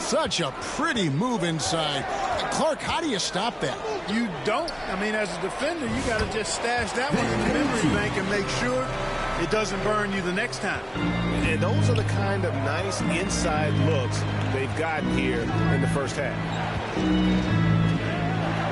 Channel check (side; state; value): both; identical; correlation 1.00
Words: a pretty move inside. Clark, how do you stop that? You don't. I mean, as a defender, you got to just stash that one in the memory bank and make sure it doesn't burn you the next time. And those are the kind of nice inside looks they've gotten here in the first half.